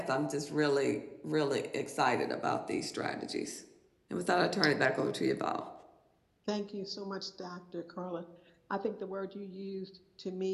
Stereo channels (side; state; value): both; identical; correlation 1.00